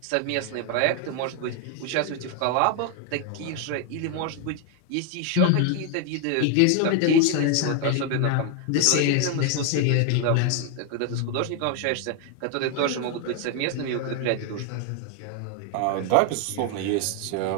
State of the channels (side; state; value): both; different; correlation 0.01